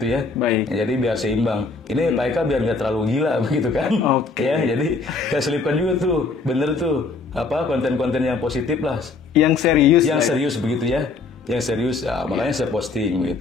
ya. Jadi biar seimbang. Ini Pak Eka biar nggak terlalu gila begitu kan. Ya, jadi saya selipkan juga tuh, bener tuh konten-konten yang positif lah. Yang serius begitu ya. Yang serius, makanya saya posting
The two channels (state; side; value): quieter; right; 4.1 dB